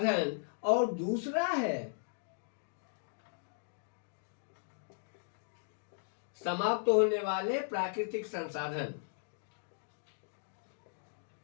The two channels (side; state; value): right; silent; digital silence